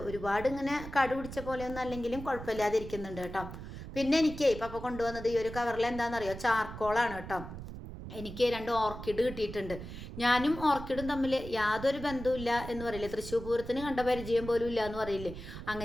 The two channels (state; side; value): noise; right; rumble, 10 dB below the sound